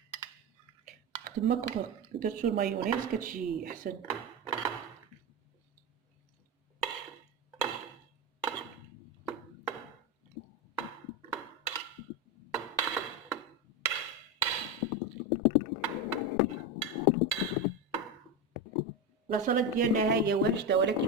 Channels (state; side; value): normal; both; correlation 0.15